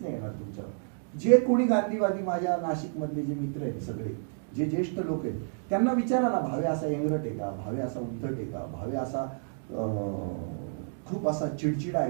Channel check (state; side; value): silent; left; digital silence